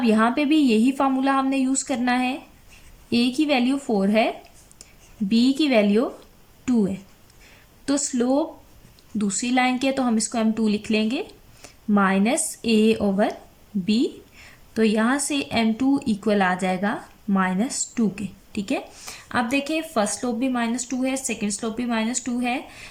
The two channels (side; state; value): both; identical; correlation 1.00